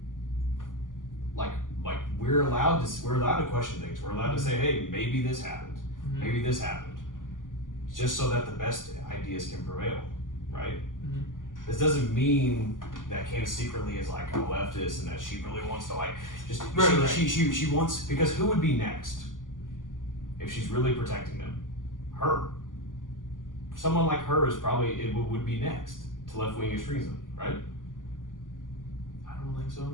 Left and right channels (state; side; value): late; right; 0.88 ms